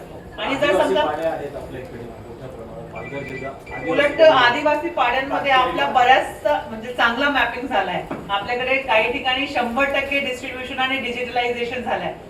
आणि जर समजा उलट आदिवासी पाड्यांमध्ये आपला बऱ्याच म्हणजे चांगला मॅपिंग झालाय। आपल्याकडे काही ठिकाणी 100% डिस्ट्रीब्युशन आणि डिजिटलायझेशन झालंय।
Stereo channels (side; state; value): both; identical; correlation 1.00